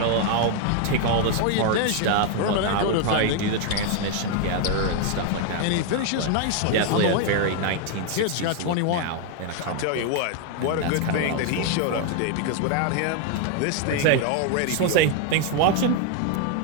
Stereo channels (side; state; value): both; different; correlation 0.01